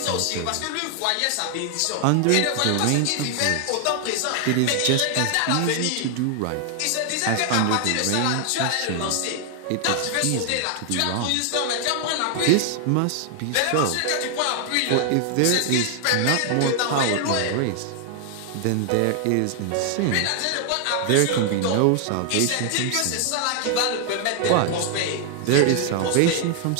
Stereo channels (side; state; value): both; different; correlation 0.00